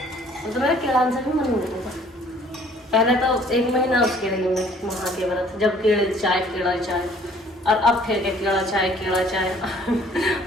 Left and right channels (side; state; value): both; normal; correlation 0.57